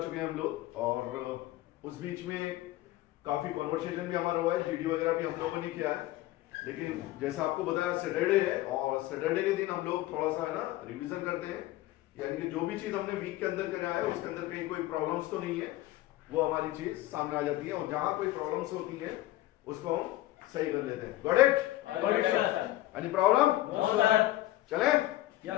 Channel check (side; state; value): right; quieter; 16.1 dB